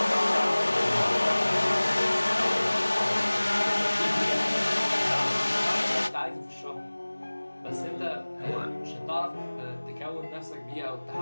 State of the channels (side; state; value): both; inverted; correlation -1.00